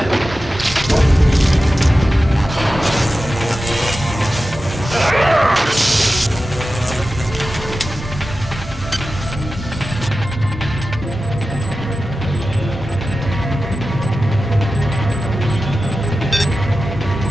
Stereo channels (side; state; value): both; normal; correlation 0.94